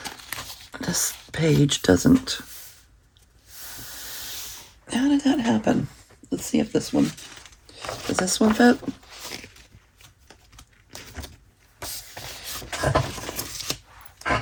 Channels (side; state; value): both; identical; correlation 1.00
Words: This page doesn't... How did that happen? Let's see if this one... Does this one fit?